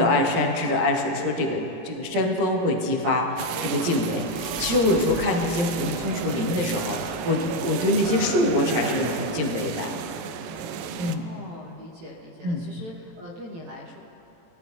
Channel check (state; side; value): late; left; 19 ms